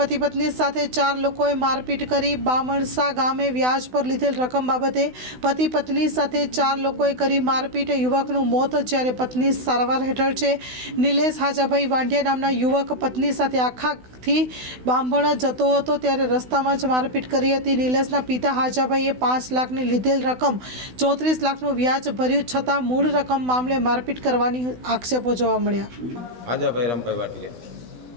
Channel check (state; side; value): late; left; 16 ms